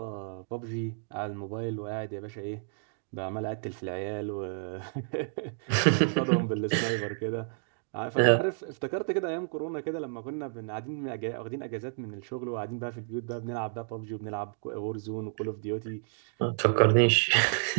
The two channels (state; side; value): silent; left; digital silence